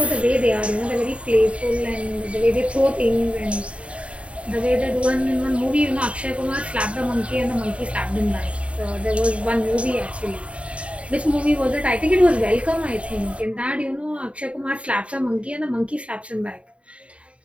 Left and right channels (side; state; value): left; late; 0.062 ms